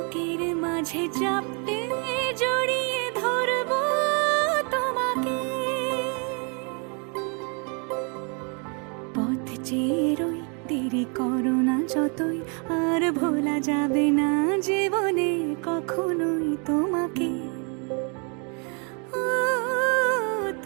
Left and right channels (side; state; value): left; quieter; 36.0 dB